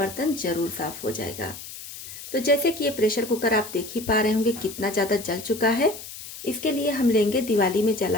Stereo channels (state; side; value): noise; left; hiss, 12 dB below the sound